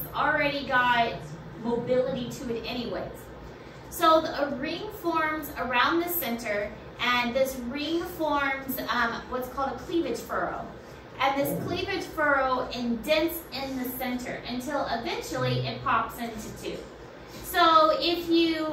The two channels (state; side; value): identical; both; correlation 1.00